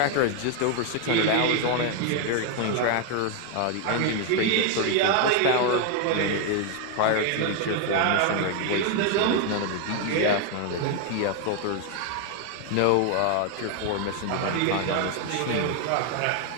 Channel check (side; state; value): both; different; correlation 0.01